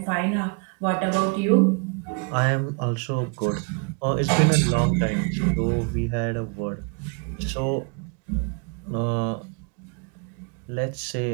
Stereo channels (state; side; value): quieter; left; 34.9 dB